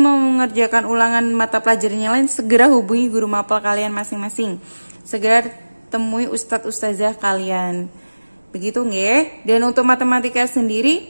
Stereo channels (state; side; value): inverted; both; correlation -1.00